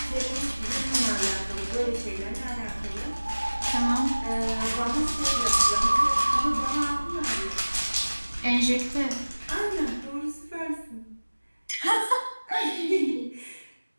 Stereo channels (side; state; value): both; inverted; correlation -1.00